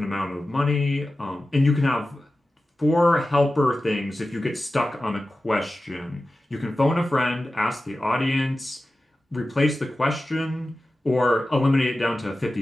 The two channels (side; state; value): both; normal; correlation 0.94